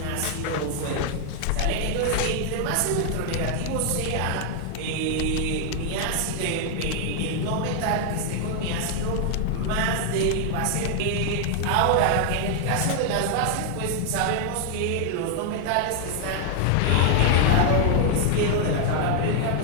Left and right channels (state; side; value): different; both; correlation 0.00